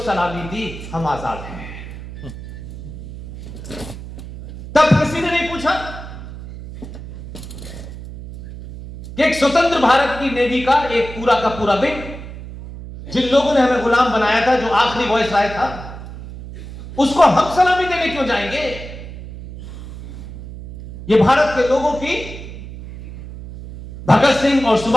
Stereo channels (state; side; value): noise; right; hum, 12 dB below the sound